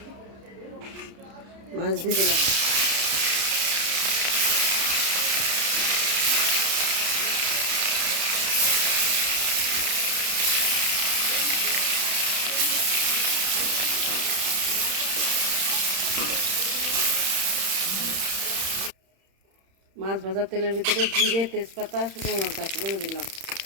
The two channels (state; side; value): late; left; 31 ms